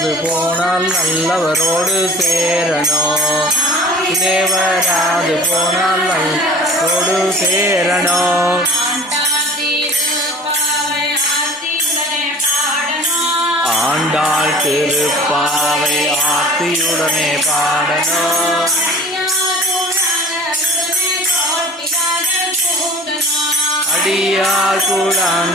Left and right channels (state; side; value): normal; both; correlation 0.44